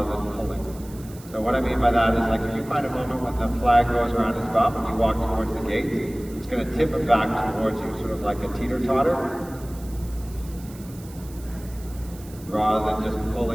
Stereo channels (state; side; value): noise; right; hiss, 21 dB below the sound